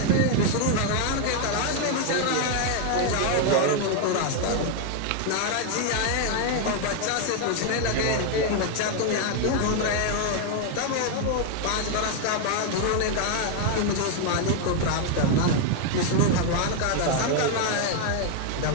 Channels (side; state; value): both; different; correlation 0.01